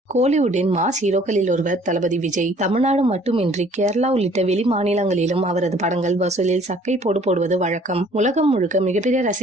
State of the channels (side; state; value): both; normal; correlation 0.56